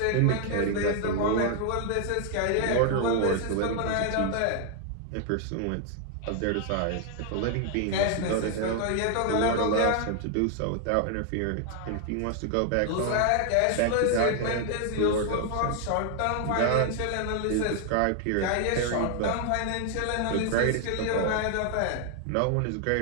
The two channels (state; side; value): different; both; correlation 0.00